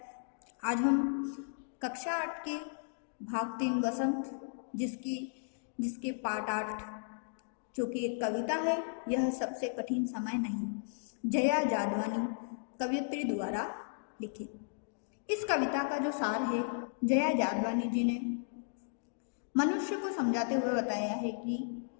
आज हम कक्षा 8 के भाग 3 वसंत जिसके पार्ट 8 जो कि एक कविता है, यह सबसे कठिन समय नहीं, जया जादवानी कवयित्री द्वारा लिखित। इस कविता का जो सार है, जया जादवानी जी ने मनुष्य को समझाते हुए बताया है कि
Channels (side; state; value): right; silent; digital silence